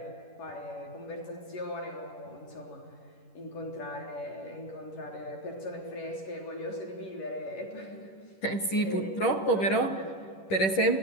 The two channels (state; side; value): late; right; 10 ms